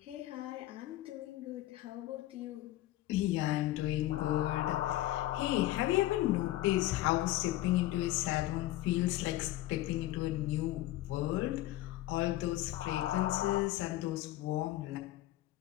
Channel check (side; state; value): right; quieter; 15.8 dB